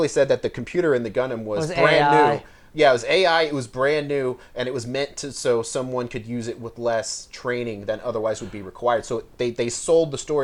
said that the computer in the Gundam was brand AI. new. Yeah, it was AI. It was brand new, and it was meant to so someone could use it with less training than otherwise would be required. So they sold the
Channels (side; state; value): both; identical; correlation 1.00